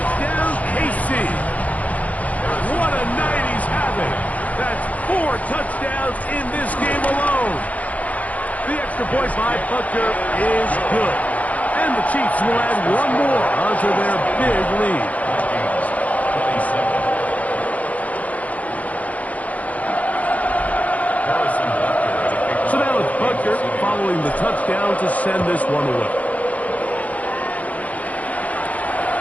KC. What a night he's having. That's 4 touchdowns in this game alone. The extra point by Butker is good. And the Chiefs will add one more onto their big lead. So now it's Butker following the touchdown to send this one away.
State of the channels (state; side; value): late; right; 0.071 ms